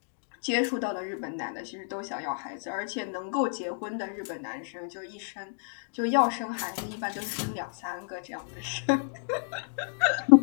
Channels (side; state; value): right; silent; digital silence